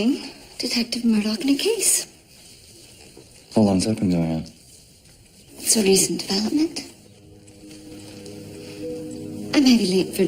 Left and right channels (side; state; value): both; identical; correlation 1.00